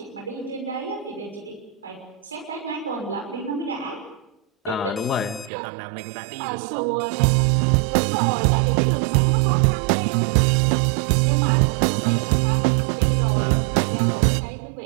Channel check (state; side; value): drops out; left; at 5.5 s